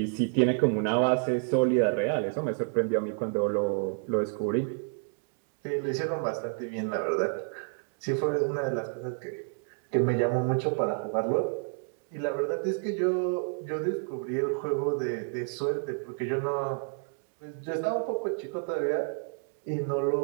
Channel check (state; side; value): silent; left; 58 dB below the other